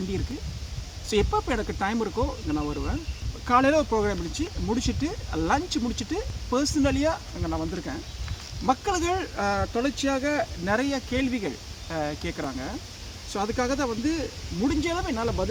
இருக்குது. ஸோ எப்போ எனக்கு டைம் இருக்கோ இங்கே நான் வருவேன். காலையில் ஒரு ப்ரோக்ராம் முடிச்சுட்டு லஞ்ச் முடிச்சுட்டு பர்சனலியாக இங்கே நான் வந்திருக்கேன். மக்கள்கள் தொடர்ச்சியாக நிறைய கேள்விகள் கேட்குறாங்க. ஸோ அதுக்காக தான் வந்து முடிஞ்ச அளவு என்னால்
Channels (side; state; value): both; identical; correlation 1.00